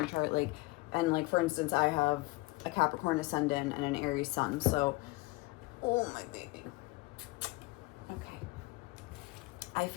chart, like, and like for instance, I have a Capricorn ascendant and an Aries sun. So, oh my baby. Okay. I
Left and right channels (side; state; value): right; quieter; 22.7 dB